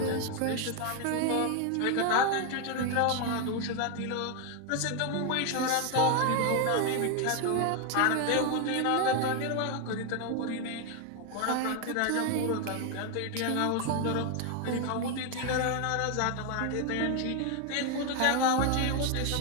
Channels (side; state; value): both; different; correlation 0.01